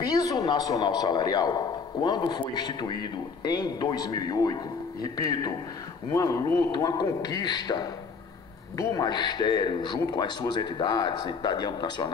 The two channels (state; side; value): quieter; right; 5.2 dB